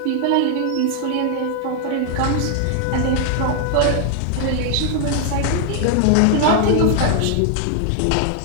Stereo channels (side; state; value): both; different; correlation 0.00